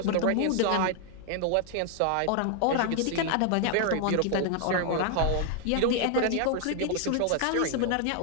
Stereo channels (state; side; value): different; both; correlation 0.00